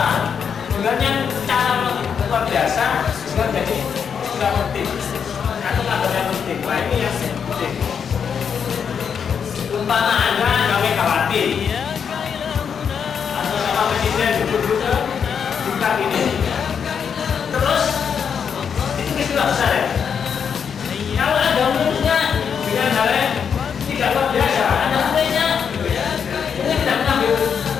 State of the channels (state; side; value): quieter; right; 7.0 dB